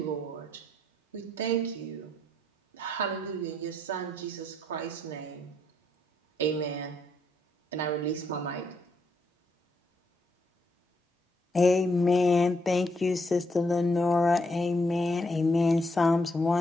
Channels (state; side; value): normal; both; correlation 0.76